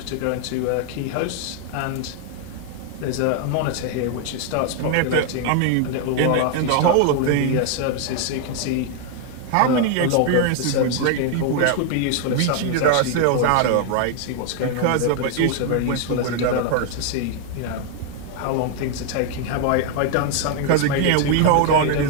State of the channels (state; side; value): different; both; correlation 0.00